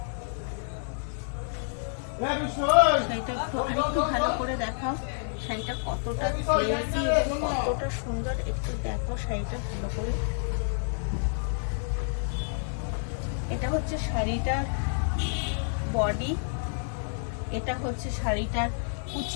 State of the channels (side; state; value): right; silent; 59 dB below the other